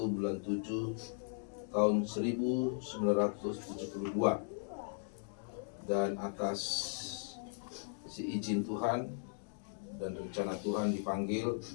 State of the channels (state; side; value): silent; right; digital silence